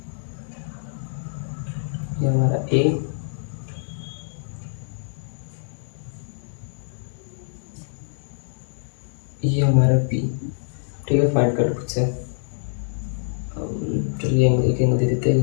ये हमारा ए, ये हमारा बी। ठीक है, फाइंड कर लो खुद से। चलिए एक एंगल दे देते हैं,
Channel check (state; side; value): silent; right; digital silence